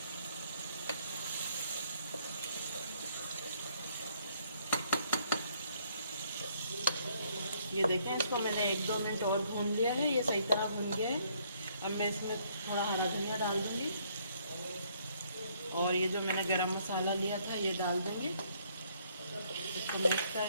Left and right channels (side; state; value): both; inverted; correlation -0.67